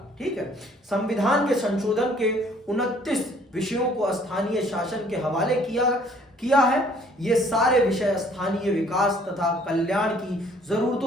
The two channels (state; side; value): normal; both; correlation 0.59